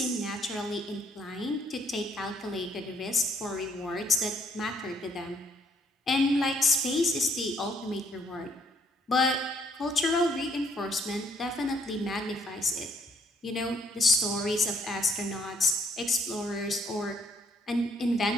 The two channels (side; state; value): both; normal; correlation 0.67